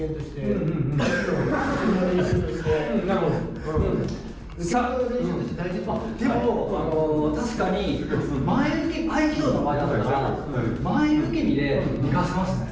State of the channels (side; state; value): both; identical; correlation 1.00